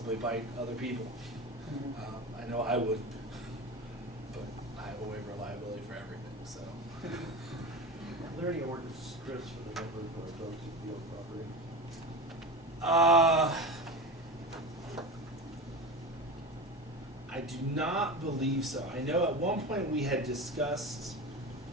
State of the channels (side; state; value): both; normal; correlation 0.27